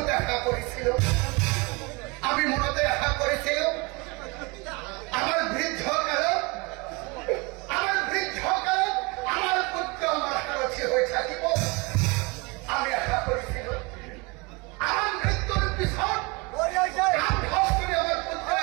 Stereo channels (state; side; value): quieter; left; 26.7 dB